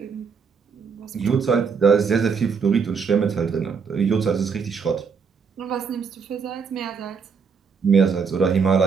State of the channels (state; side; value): quieter; left; 5.8 dB